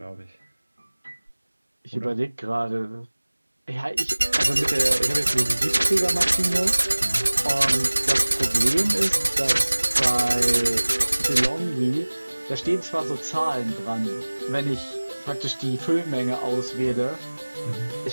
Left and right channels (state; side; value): inverted; both; correlation -1.00